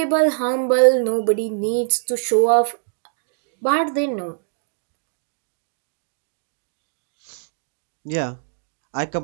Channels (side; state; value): left; silent; digital silence